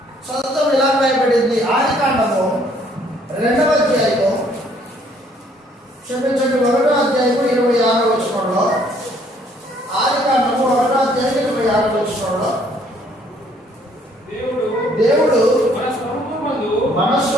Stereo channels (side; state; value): both; normal; correlation 0.63